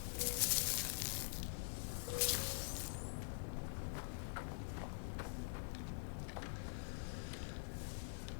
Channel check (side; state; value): right; silent; digital silence